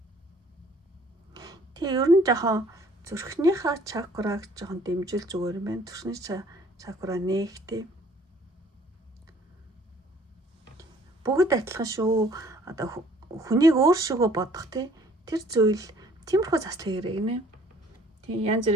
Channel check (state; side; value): normal; both; correlation 0.57